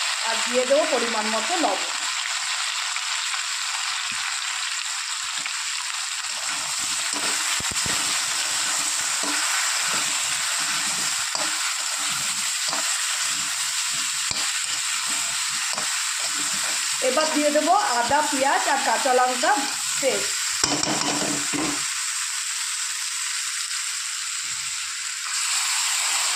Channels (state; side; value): identical; both; correlation 1.00